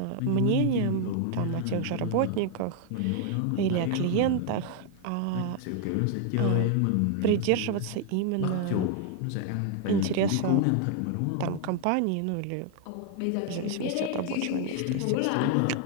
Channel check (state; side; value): different; both; correlation 0.00